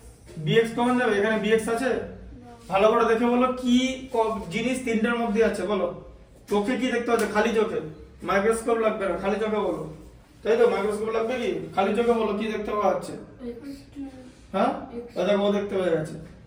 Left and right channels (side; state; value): both; identical; correlation 1.00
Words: bx কমন যাবে এখানে bx আছে ভালো করে দেখে বলো কি জিনিস তিনটার মধ্যে আছে বলো চোখে কি দেখতে পাচ্ছ খালি চোখে মাইক্রোস্কোপ লাগবে না খালি চোখে বলো তাই তো মাইক্রোস্কোপ লাগবে কি খালি চোখে বলো কি দেখতে পাওয়া যাচ্ছে হ্যাঁ ও দেখো ও দেখতে পেয়ে গেছে।